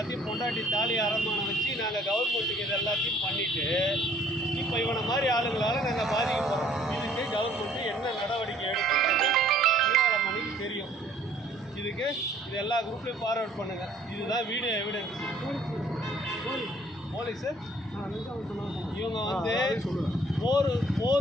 பொண்டாட்டி தாலி அரமானம் வச்சு நாங்கள் கவர்மெண்ட்டுக்கு இது எல்லாத்தையும் பண்ணிவிட்டு இப்போ இவனை மாதிரி ஆளுங்களால் நாங்கள் பாதிக்க போகிறோம். இதுக்கு கவர்மெண்ட்டு என்ன நடவடிக்கை எடுக்கிறது மணிக்கு தெரியும். இதுக்கு இது எல்லா குரூப்லேயும் ஃபார்வர்ட் பண்ணுங்கள். இதுதான் வீடியோ எவிடன்ஸ். போலீஸு இவங்க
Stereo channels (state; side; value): normal; both; correlation 0.58